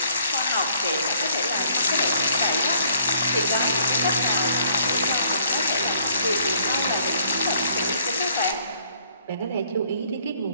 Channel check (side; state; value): both; inverted; correlation -0.63